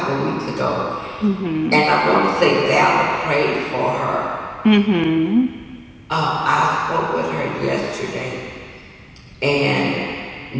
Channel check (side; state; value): both; identical; correlation 1.00